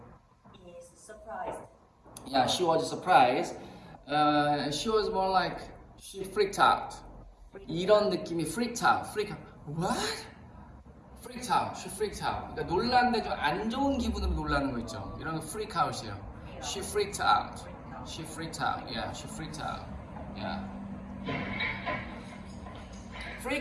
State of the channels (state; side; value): identical; both; correlation 1.00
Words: is surprised. Yeah, she was surprised. She was more like she freaked out. 이런 느낌이 freaked out. What? Freaked out. She freaked out. 그러니까 놀랐는데 좀 안 좋은 기분으로 놀라는 거 있죠. 이런 거 freak out이에요. She freaked out. She freaked out. Yeah, she freaked out. Yeah.